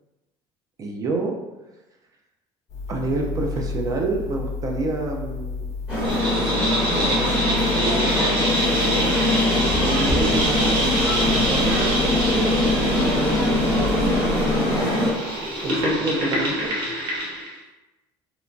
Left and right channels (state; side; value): normal; both; correlation 0.43